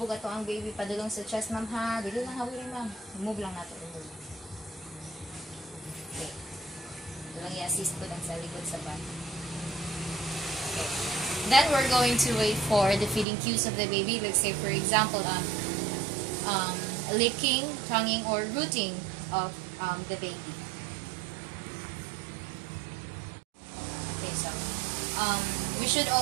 ato ang baby padulong sa chest, ma'am, ha? Dili lang hawin, ma'am. Move lang nato. Remove. Okay. Ito lang i-assist ko lang sa likod sa back. Okay. Then, we're going to wait for the feeding cues of the baby. Let's say, for example, licking, tonguing, or rooting of the baby. Okay, so, we should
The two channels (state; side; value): drops out; left; at 13.2 s